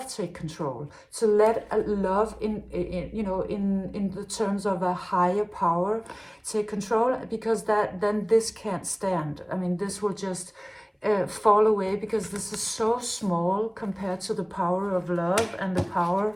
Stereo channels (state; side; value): identical; both; correlation 1.00